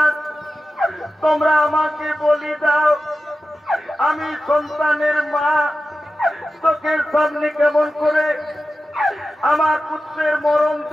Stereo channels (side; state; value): both; normal; correlation 0.93